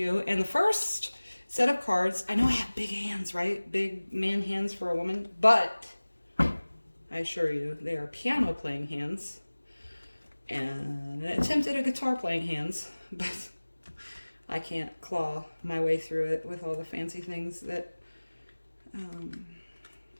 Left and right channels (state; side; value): inverted; both; correlation -1.00